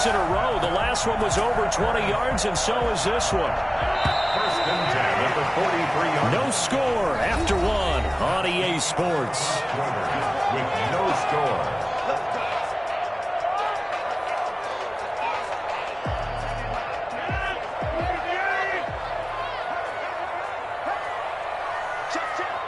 in a row. The last one was over 20 yards, and so is this one. 1st and 10 at the 43-yard. No score after 1 on EA Sports. With no score.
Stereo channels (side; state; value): both; identical; correlation 1.00